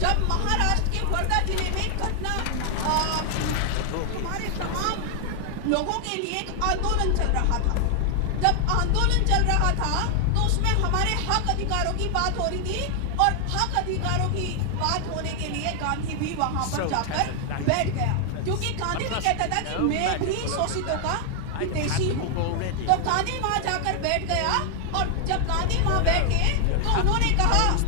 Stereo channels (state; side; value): different; both; correlation 0.00